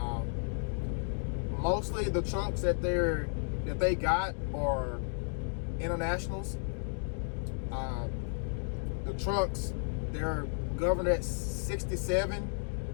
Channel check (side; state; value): right; silent; 56 dB below the other